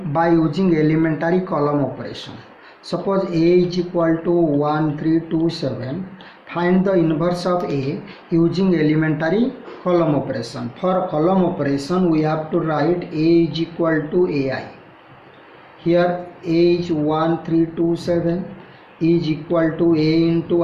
by using elementary column operation. Suppose A is equal to 1, 3, 2, 7. Find the inverse of A using elementary column operation. For column operation, we have to write A is equal to AI. Here A is 1, 3, 2, 7 is equal to A into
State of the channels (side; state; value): both; identical; correlation 1.00